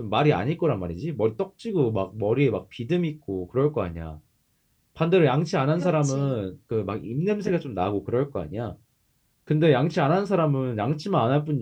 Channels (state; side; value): identical; both; correlation 1.00